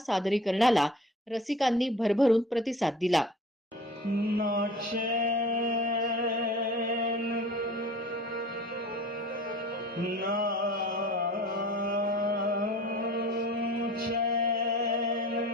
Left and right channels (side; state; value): both; normal; correlation 0.43